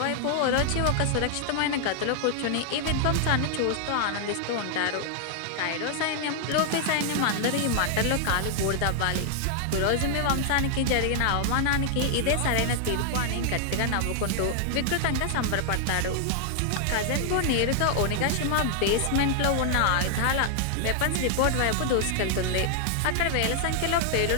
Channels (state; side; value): different; both; correlation 0.00